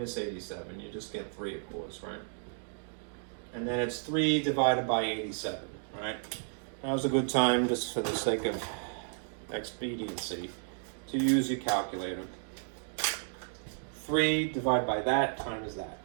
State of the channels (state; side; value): silent; left; digital silence